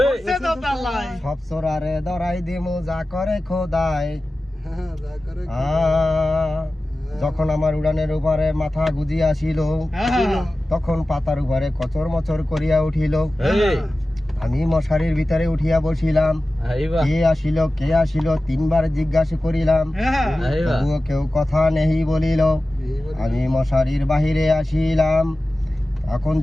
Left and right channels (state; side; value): normal; both; correlation 0.95